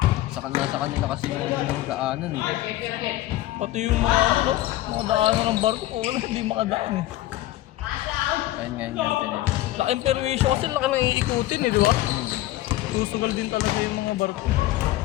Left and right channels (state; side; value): quieter; right; 15.7 dB